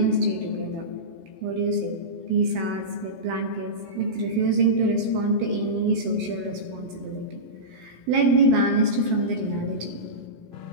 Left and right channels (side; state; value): left; late; 17 ms